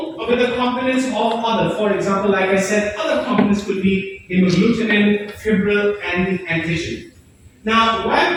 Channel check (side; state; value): both; identical; correlation 1.00